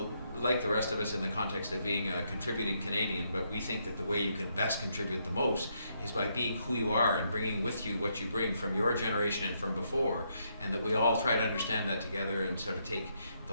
like the rest of us in the context of being a contributing Canadian, but we think that the way you can best contribute the most is by being who you are and bringing with you what you bring from your generation and from before, and that we all try to understand that together and sort of take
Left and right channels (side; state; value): both; inverted; correlation -0.76